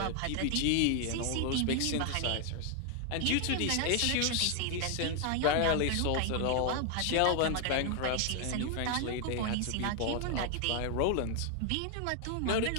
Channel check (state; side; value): different; both; correlation 0.00